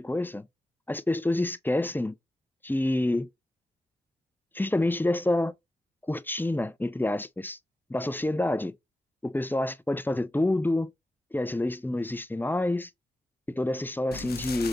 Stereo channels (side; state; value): both; normal; correlation 0.92